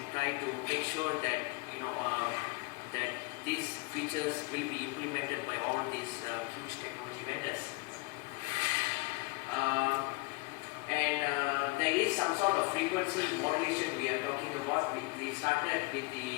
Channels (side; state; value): right; quieter; 25.1 dB